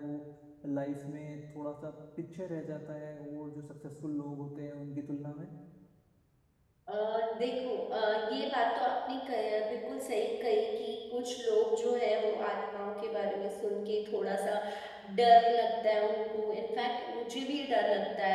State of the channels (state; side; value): identical; both; correlation 1.00